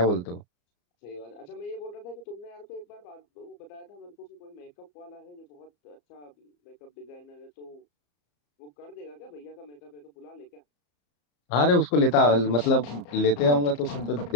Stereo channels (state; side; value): late; right; 34 ms